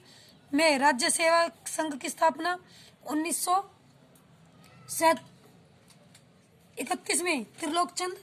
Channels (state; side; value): identical; both; correlation 1.00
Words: में राज्य सेवा संघ की स्थापना 1931 में। त्रिलोकचंद